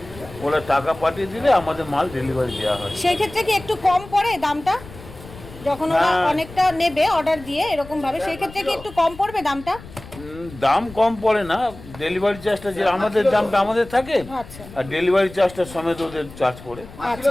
ওরা টাকা পাঠিয়ে দিলে আমাদের মাল ডেলিভারি দেওয়া হয়। সেই ক্ষেত্রে কি একটু কম পড়ে দামটা, যখন ওরা অনেকটা নেবে অর্ডার দিয়ে এরকম ভাবে, সেই ক্ষেত্রে কি একটু কম পড়বে দামটা? দাম কম পড়ে না, ডেলিভারি চার্জটা যে আমাদের দামটা আমাদের থাকে, আর ডেলিভারি চার্জটা সমেত ওদের চার্জ পড়ে। আচ্ছা,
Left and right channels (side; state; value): left; noise; rumble, 17 dB below the sound